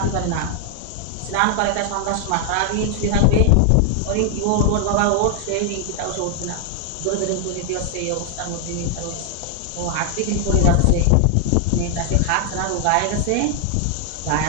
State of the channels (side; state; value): both; different; correlation 0.00